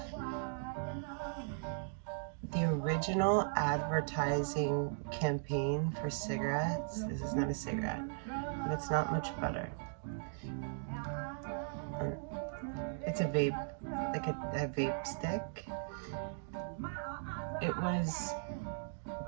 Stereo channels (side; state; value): left; silent; digital silence